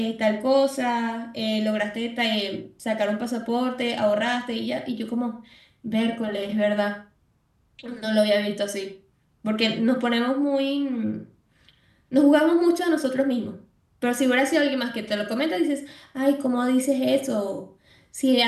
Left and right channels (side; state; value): both; identical; correlation 1.00